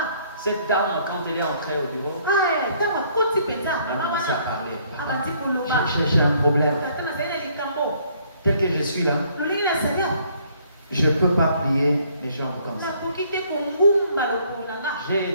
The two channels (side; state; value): both; inverted; correlation -0.64